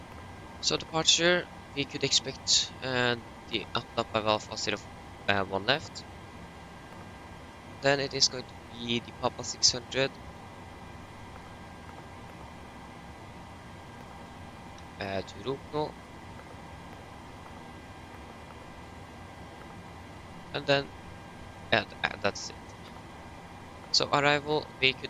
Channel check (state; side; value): identical; both; correlation 1.00